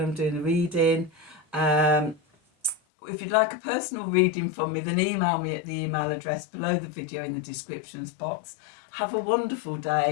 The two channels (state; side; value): drops out; right; at 2.8 s